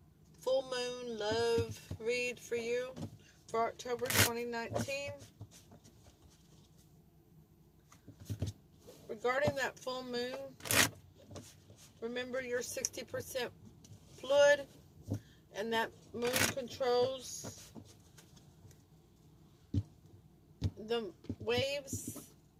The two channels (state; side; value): identical; both; correlation 1.00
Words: full moon love read for you for October 2019. Regarding that full moon, remember you're 60% fluid and that moon controls the waves,